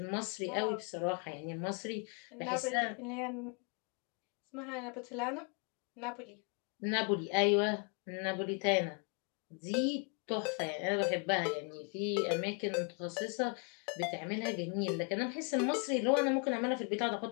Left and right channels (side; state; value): right; quieter; 37.4 dB